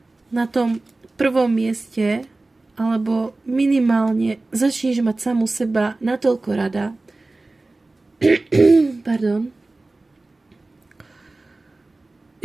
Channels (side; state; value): left; quieter; 3.1 dB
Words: na tom prvom mieste, alebo minimálne začneš mať samu seba natoľko rada, pardon,